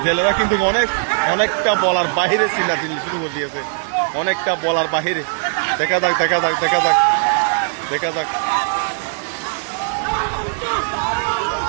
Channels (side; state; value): left; silent; digital silence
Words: জেলেরা কিন্তু অনেকটা বলার বাহিরে চিল্লাচিল্লি শুরু করে দিয়েছে, অনেকটা বলার বাহিরে। দেখা যাক